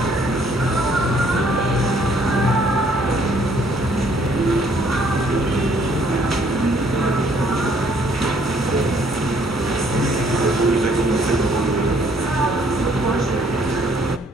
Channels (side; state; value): both; normal; correlation 0.64